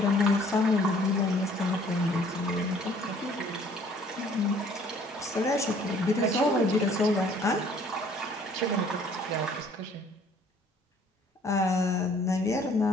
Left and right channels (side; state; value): both; normal; correlation 0.57